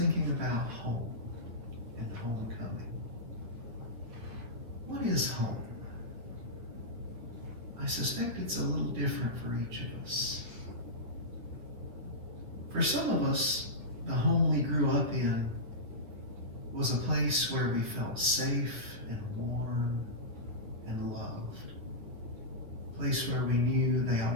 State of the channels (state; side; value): late; left; 9.3 ms